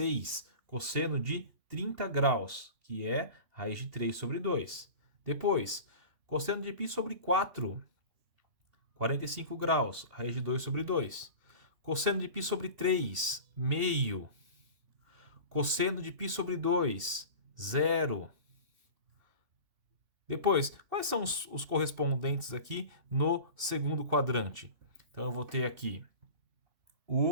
cosseno de 30 graus, que é raiz de 3 sobre 2. Depois, cosseno de π sobre 4, 45 graus, raiz de 2 sobre 2. Cosseno de π sobre 3, meio. Cosseno de π sobre 2, 0. Depois, quais são os correspondentes aqui no segundo quadrante? Então, eu vou ter aqui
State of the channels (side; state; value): left; late; 2.7 ms